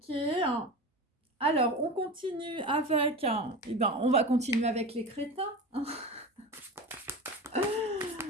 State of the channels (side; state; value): both; normal; correlation 0.28